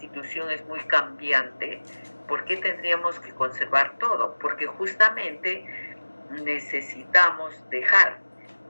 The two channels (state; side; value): inverted; both; correlation -1.00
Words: es muy cambiante, ¿por qué tendríamos que conservar todo? Porque justamente necesitamos dejar